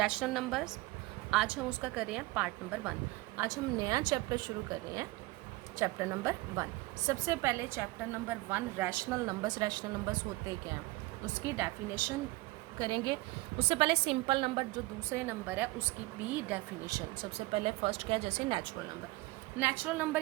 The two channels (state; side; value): quieter; left; 21.0 dB